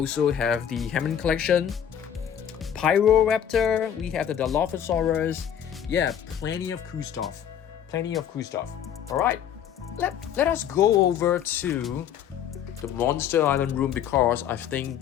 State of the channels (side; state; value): right; quieter; 9.2 dB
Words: have the Hammond collection. Pyroraptor. We have the Dilophosaurus. Yeah, plenty of cool stuff. Alright, let us go over to the Monster Island room because I think